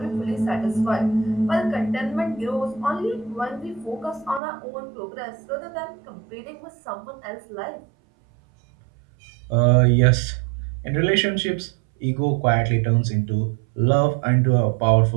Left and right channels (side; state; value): left; drops out; at 4.4 s